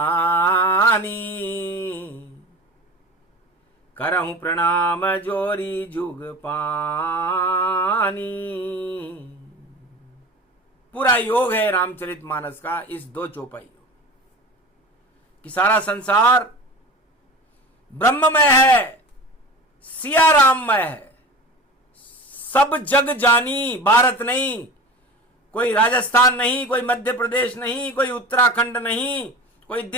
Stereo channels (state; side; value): normal; both; correlation 0.34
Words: करहूं प्रणाम जोरी जुग पानी। पूरा योग है रामचरितमानस का इस दो चौपाई कि सारा संसार ब्रह्ममय है, सिया राममय है। सब जग जानी, भारत नहीं, कोई राजस्थान नहीं, कोई मध्य प्रदेश नहीं, कोई उत्तराखंड नहीं, कोई